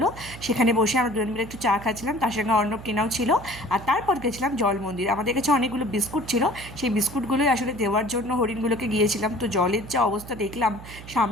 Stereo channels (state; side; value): noise; right; hum, 15 dB below the sound